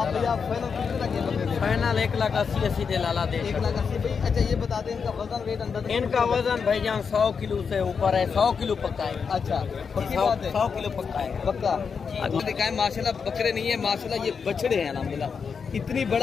भैया फाइनल कितने लगे बकरे? फाइनल 1,80,000 दे लाला दे 1,80,000 भाई। अच्छा ये बता दें इनका वजन वेट अंदर? इनका वजन भाईजान 100 किलो से ऊपर है, 100 किलो पक्का है। अच्छा पक्की बात है, 100 किलो पक्का है पक्का। आपको दिखाएं माशाल्लाह बकरे नहीं है माशाल्लाह, ये बछड़े हैं अल्हम्दुलिल्लाह। इतनी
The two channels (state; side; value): quieter; right; 6.0 dB